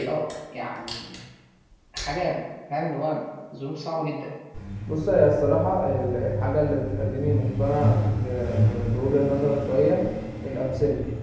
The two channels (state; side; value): identical; both; correlation 1.00